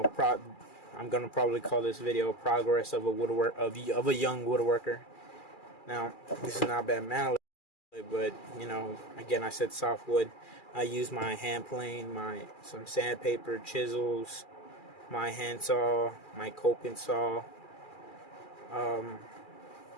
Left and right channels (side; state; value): right; late; 2.4 ms